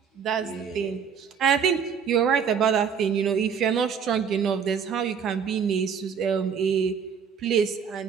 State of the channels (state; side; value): quieter; left; 7.0 dB